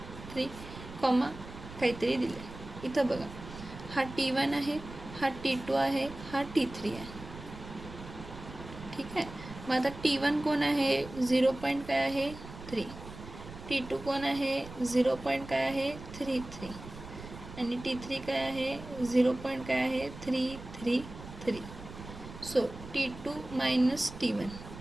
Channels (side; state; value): right; noise; rumble, 14 dB below the sound